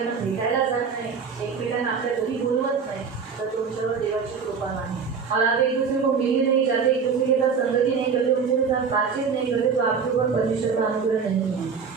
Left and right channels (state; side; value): quieter; left; 5.9 dB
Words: भेटायला जात नाही एकमेकांना आपल्या घरी बोलवत नाही तर तुमच्यावर देवाची कृपा नाही. और आप एक दूसरे को मिलने नहीं जाते, एक दूसरे के साथ संगति नहीं करते, उनके साथ बातचीत नहीं करते तो आपके ऊपर परमेश्वर का अनुग्रह नहीं है.